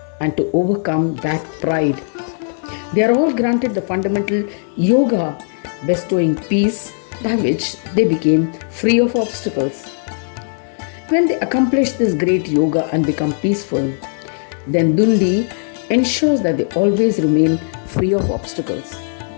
and to overcome that pride. They are all granted the fundamental yoga bestowing peace by which they became free of obstacles. When they accomplish this great yoga and become peaceful, then Dundi ensures that they always remain free of obstacles.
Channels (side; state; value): right; silent; digital silence